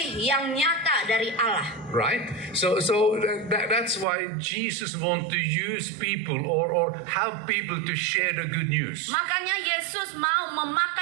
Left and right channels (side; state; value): left; drops out; at 4.0 s